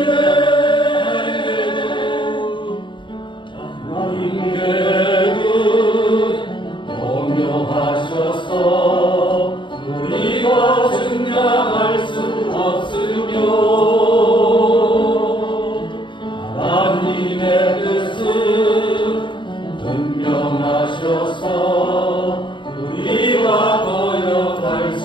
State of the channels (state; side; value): late; right; 0.23 ms